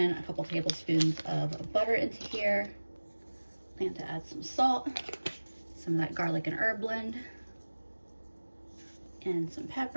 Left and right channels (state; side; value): inverted; both; correlation -1.00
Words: a couple tablespoons of butter into here. Plan to add some salt, some of that garlic and herb blend, and some